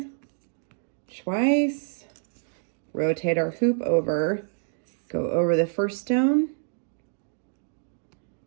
twice. Rotate our hoop over, go over the first stone,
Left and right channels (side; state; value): left; silent; 60 dB below the other